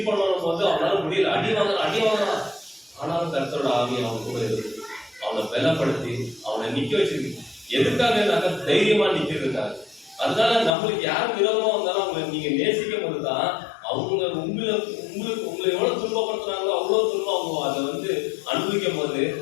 பண்ணணும் போது அவனால முடியல. அடி வாங்கலாம். ஆனாலும் கர்த்தரோட ஆவி அவன் கூட இருக்கு. அவனை பலப்படுத்தி அவனை நிக்க வச்சிருக்கு. எதுக்காக தைரியமா நிக்கிறதுக்காக. அதனால நம்மளுக்கு யார் விரோதமா வந்தாலும் அவங்களை நீங்க நேசிக்கும் போதுதான் அவங்க உங்களை எவ்வளவு துன்பப்படுத்துறாங்களோ அவ்வளவு துன்பம் அவங்க அதை அனுபவிக்கும் போது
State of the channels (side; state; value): right; drops out; at 10.8 s